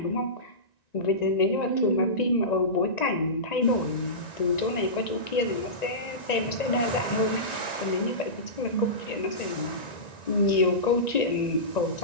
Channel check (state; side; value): late; right; 1.9 ms